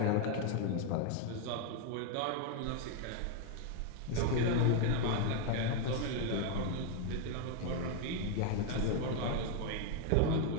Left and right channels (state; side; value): different; both; correlation 0.00